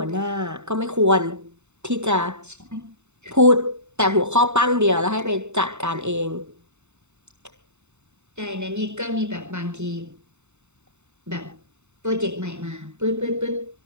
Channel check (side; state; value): left; late; 0.83 ms